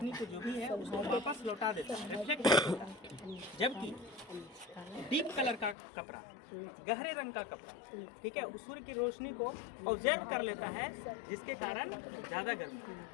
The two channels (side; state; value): right; drops out; at 5.8 s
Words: को जो भी है उसको वापस लौटा देता है, रिफ्लेक्ट करता है। जबकि डीप कलर का कपड़ा, गहरे रंग का कपड़ा, ठीक है, उस सूर्य की रोशनी को ऑब्जर्व कर लेता है, जिसके कारण ज़्यादा